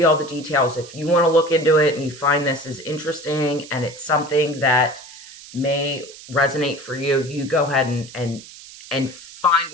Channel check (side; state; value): right; noise; hiss, 17 dB below the sound